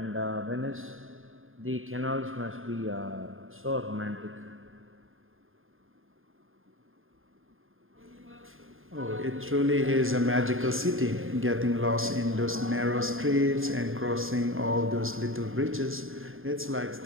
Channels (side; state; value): left; late; 0.60 ms